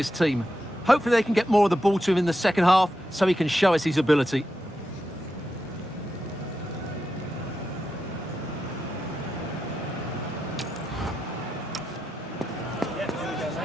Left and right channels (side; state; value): both; normal; correlation 0.88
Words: team. Hopefully they can get more of the ball to him in the second half, so he can show us his ability.